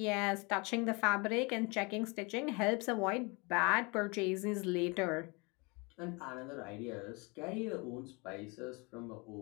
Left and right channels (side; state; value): right; quieter; 28.6 dB